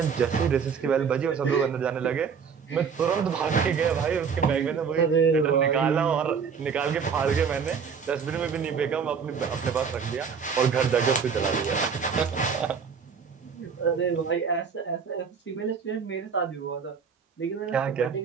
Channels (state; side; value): quieter; left; 6.3 dB